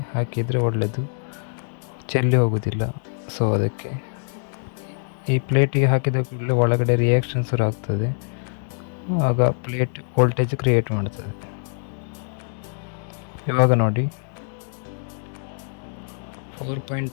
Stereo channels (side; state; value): right; silent; digital silence